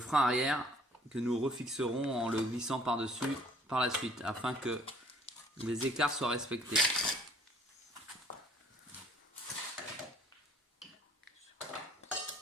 arrière que nous refixerons en le glissant par-dessus par la suite afin que les écarts soient respectés.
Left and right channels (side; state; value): both; normal; correlation 0.57